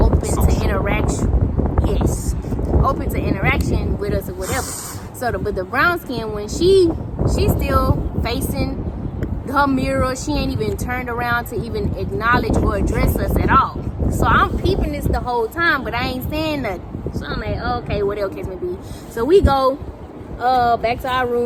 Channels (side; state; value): both; identical; correlation 1.00